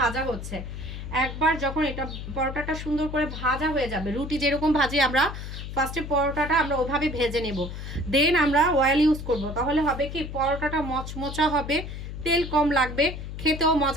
ভাজা হচ্ছে। একবার যখন এটা পরোটাটা সুন্দর করে ভাজা হয়ে যাবে, রুটি যেরকম ভাজি আমরা ফার্স্টে পরোটাটা আমরা ওভাবে ভেজে নেব, দেন আমরা অয়েল ইউজ করব। তাহলে হবে কি পরোটাটা মচমচা হবে, তেল কম লাগবে, খেতেও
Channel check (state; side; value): noise; left; hum, 8 dB below the sound